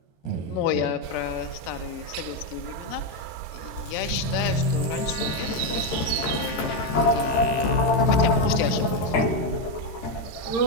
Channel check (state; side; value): late; right; 13 ms